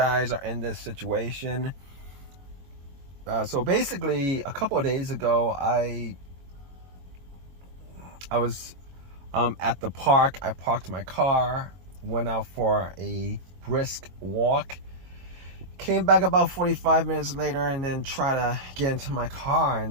are in this situation. So basically, a couple of days ago, I was at the park. I parked my car, went out for a brisk walk, came back about 45 minutes later, and then tried to get into my car,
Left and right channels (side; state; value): left; late; 22 ms